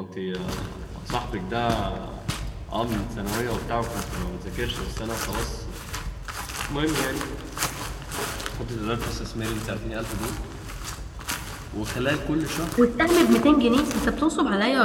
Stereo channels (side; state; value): both; identical; correlation 1.00